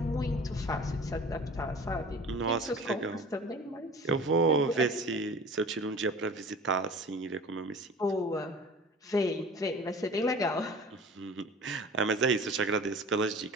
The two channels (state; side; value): normal; both; correlation 0.41